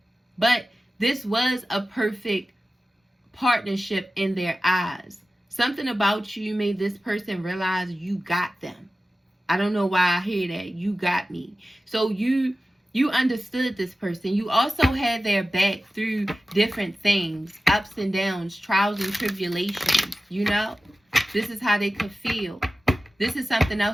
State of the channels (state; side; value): normal; both; correlation 0.95